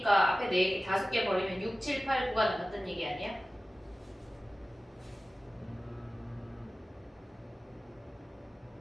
앞에 4개, 5개 버리면 6, 7, 8, 9가 남았다는 얘기 아니야?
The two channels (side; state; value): both; normal; correlation 0.96